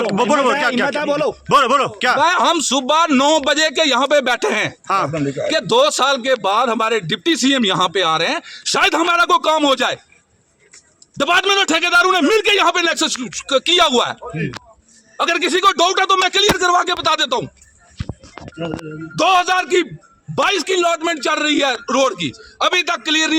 बोलो क्या बोलो क्या? हम सुबह 9 बजे के यहाँ पे बैठे हैं कि 2 साल के बाद हमारे डिप्टी सीएम यहाँ पे आ रहे हैं, शायद हमारा कोई काम हो जाए। डिपार्टमेंट और ठेकेदारों ने मिलकर यहाँ पे नेक्सस किया हुआ है। अगर किसी को डाउट है तो मैं क्लियर करवा के बता देता हूँ। 2022 की अलॉटमेंट चल रही है रोड की, अभी तक क्लियर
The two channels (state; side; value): identical; both; correlation 1.00